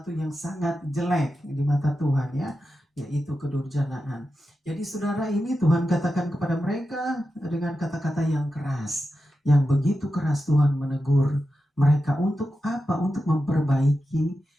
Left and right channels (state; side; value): normal; both; correlation 0.90